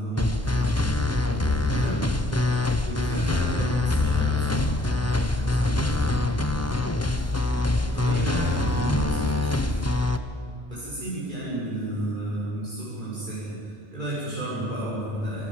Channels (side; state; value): both; normal; correlation 0.63